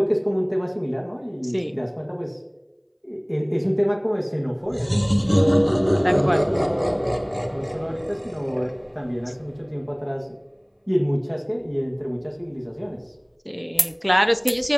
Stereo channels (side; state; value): both; identical; correlation 1.00